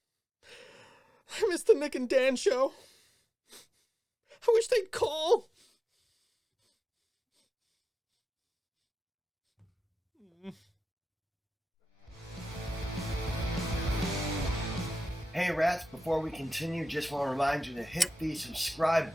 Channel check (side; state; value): both; normal; correlation 0.94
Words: I miss the Nick and Dan show. I wish they'd call. Hey rats, before we continue, just want to remind you to hit the subscribe